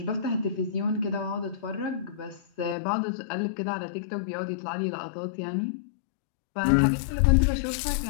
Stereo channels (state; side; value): drops out; right; at 2.8 s